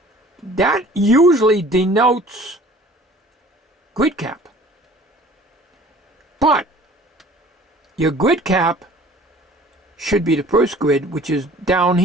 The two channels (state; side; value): normal; both; correlation 0.49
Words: That usually denotes grid cap. But your grid cap should be the first grid, which is down